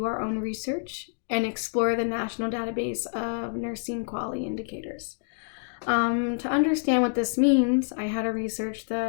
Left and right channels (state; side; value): silent; right; digital silence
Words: our own research and explore the national database of nursing quality indicators. To understand what this means, I had to research